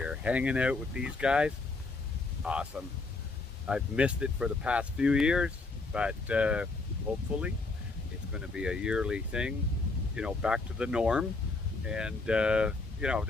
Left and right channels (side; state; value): right; quieter; 3.6 dB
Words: Hanging out with these guys, awesome. I've missed it for the past few years, but hopefully it's going to be a yearly thing, you know, back to the norm. And, you know,